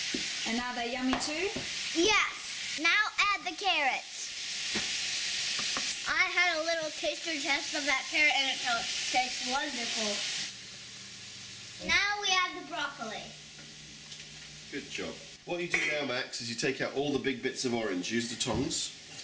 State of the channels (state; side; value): identical; both; correlation 1.00